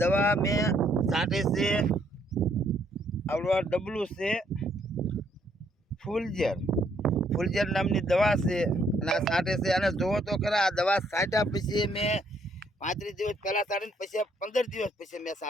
દવા મેં છાંટી છે આવડવા ડબલું છે ફૂલઝેર નામની દવા છે. અને આ છાંટે છે. અને જોવો તો ખરા, આ દવા છાંટ્યા પછી મેં 35 દિવસ પહેલાં છાંટીને પછી 15 દિવસ પછી મેં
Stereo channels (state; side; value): normal; both; correlation 0.69